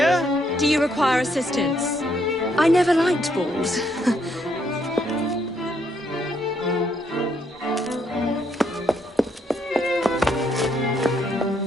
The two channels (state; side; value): normal; both; correlation 0.73